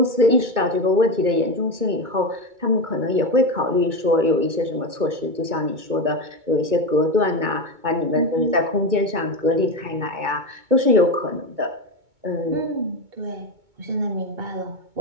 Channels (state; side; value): late; left; 2.2 ms